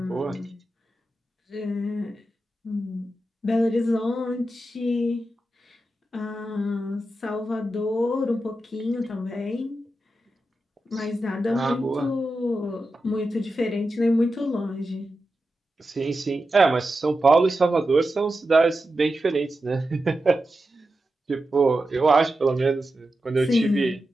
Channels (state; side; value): normal; both; correlation 0.90